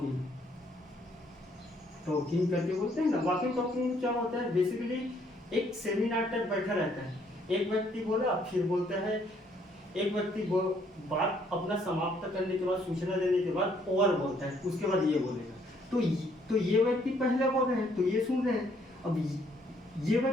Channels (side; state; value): both; normal; correlation 0.67